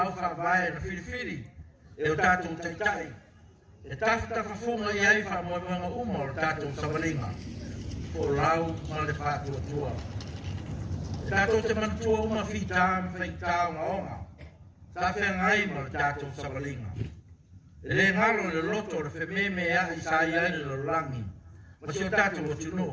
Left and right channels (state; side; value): identical; both; correlation 1.00